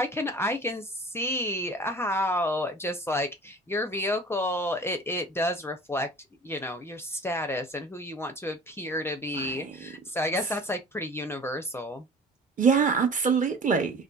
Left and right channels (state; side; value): normal; both; correlation 0.43